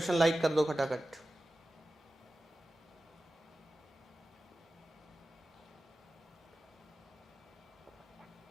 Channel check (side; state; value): both; normal; correlation 0.95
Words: लाइक कर दो खटाखट।